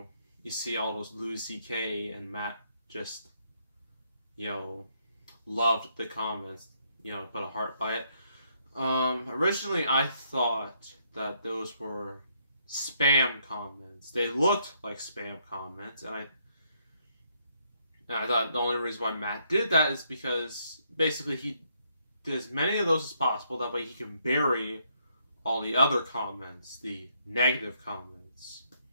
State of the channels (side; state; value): both; inverted; correlation -0.73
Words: see all those Louis C.K. and Matt just loved the comments, put a heart by it. Originally I thought that those were spam comments. They looked like spam comments, and I thought the only reason why Matt did that is because basically he did as many of those as possible. That way he can bury all the other comments, the negative comments.